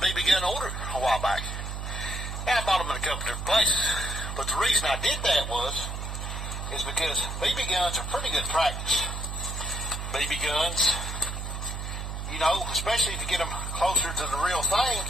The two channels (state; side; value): noise; right; hum, 5 dB below the sound